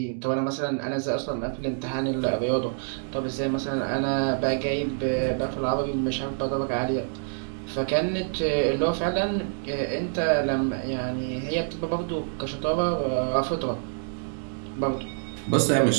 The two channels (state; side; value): silent; left; digital silence